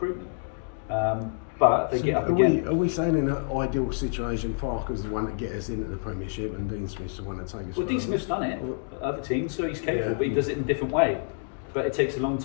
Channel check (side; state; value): right; silent; digital silence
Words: But they get up again. Are we saying in an ideal situation, Farke's the one that gets us into the Premiership and Dean Smith's the one that takes us Well, Dean Smith's done it at other teams, so he's capable, but he does it in a different way. But it takes a long